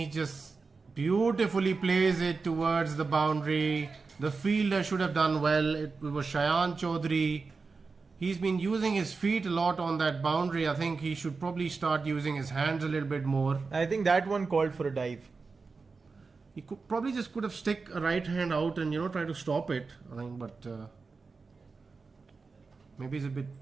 just beautifully plays it towards the boundary. The fielder should have done well. It was Shayan Chaudhary. He's been using his feet a lot on that boundary. I think he should probably start using his hands a little bit more. I think that one called for a dive. He could have stick a right hand out and try to stop it. I think, but maybe it's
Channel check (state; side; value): quieter; left; 4.4 dB